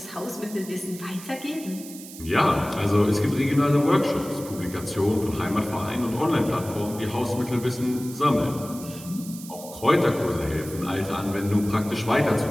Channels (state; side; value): noise; right; hiss, 15 dB below the sound